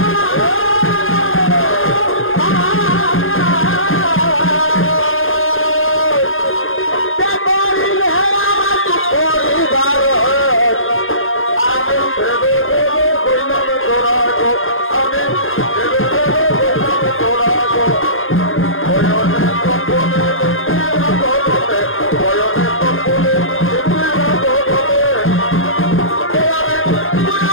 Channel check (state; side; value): late; right; 0.60 ms